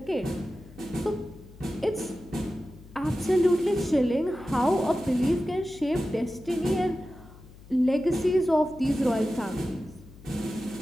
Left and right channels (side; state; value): left; noise; hum, 20 dB below the sound